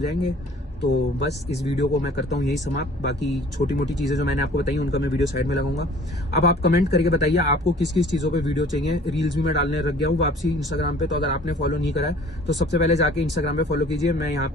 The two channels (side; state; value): both; normal; correlation 0.50